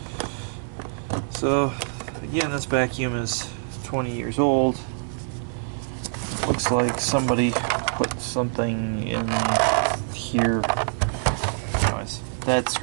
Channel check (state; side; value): silent; left; digital silence